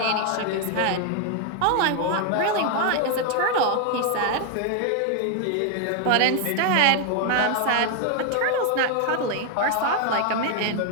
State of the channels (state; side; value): different; both; correlation 0.00